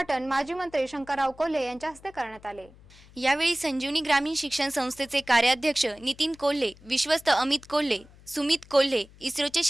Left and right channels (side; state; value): left; noise; hum, 24 dB below the sound